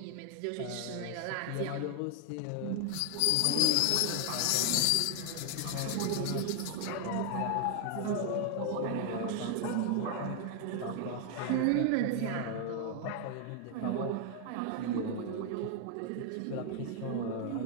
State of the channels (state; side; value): different; both; correlation 0.00